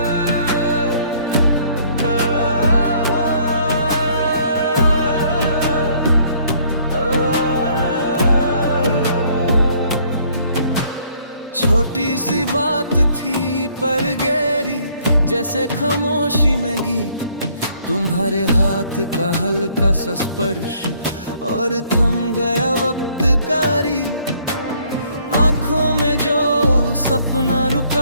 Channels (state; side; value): inverted; both; correlation -0.62